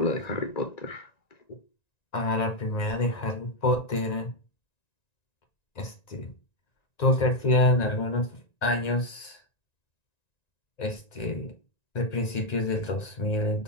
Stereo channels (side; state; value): right; late; 1.9 ms